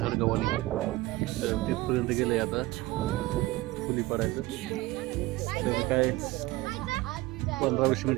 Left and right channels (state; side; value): quieter; left; 19.3 dB